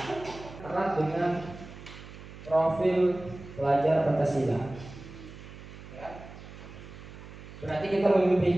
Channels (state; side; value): noise; right; hum, 15 dB below the sound